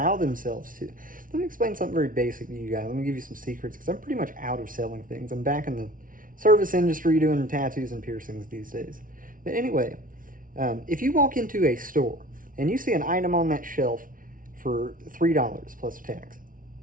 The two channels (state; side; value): late; left; 0.39 ms